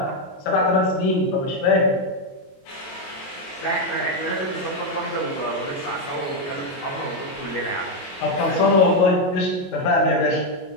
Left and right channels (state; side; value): late; right; 22 ms